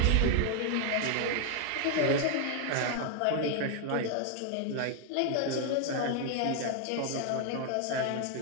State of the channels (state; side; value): different; both; correlation 0.00